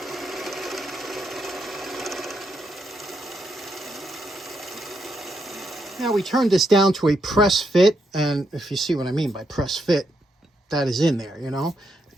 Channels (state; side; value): normal; both; correlation 0.79